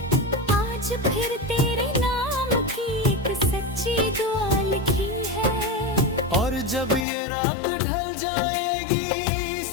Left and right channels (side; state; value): right; drops out; at 7.1 s